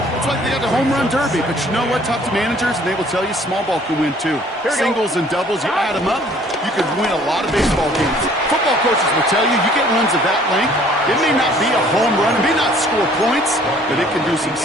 It's like they got the home run derby. But you know what? Talk to managers, and they will tell you small ball can win too. Singles and doubles, you add them up, you could win a lot of baseball games. Football coaches will tell you, you get runs of that length, it may not be a home run, it may not score points, but it can do some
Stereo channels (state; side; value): normal; both; correlation 0.57